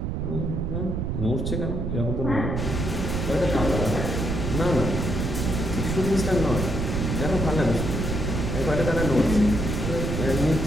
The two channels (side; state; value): right; noise; rumble, 1 dB below the sound